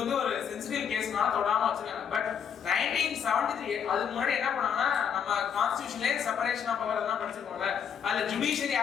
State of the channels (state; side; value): quieter; right; 7.7 dB